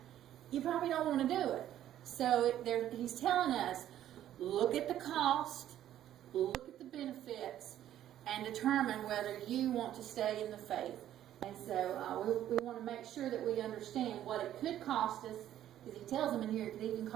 you probably don't want to do it. So he's telling us, look at the cost, look at the benefits, and determine whether you want to stay in the faith. And so we want to make sure that we understand what it could cost us, because he tells them in here it could even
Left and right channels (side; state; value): left; quieter; 11.8 dB